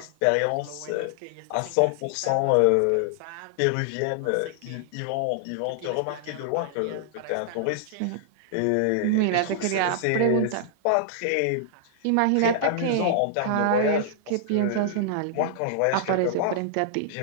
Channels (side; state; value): both; different; correlation -0.01